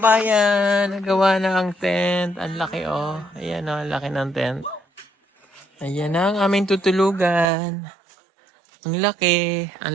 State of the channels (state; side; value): drops out; left; at 7.5 s